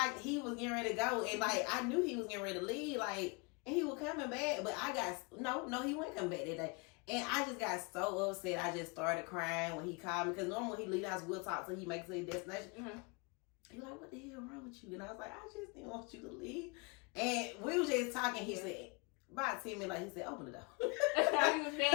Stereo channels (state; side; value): quieter; right; 30.5 dB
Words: he was getting ready to go, and like I knew he was getting ready to leave, like, and he was coming back, but I got no, he wasn't coming back that day. And I just got so upset. I just started crying when he called me, because normally when he leave the house, we'll talk till he makes it to his destination. He was like, what the hell wrong with you? And I was like, I just didn't want you to leave. And we was just talking. He said, about 10 minutes, like, he said, open the door. He was